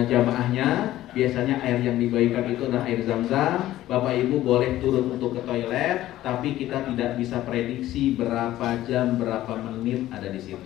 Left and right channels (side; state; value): right; quieter; 14.5 dB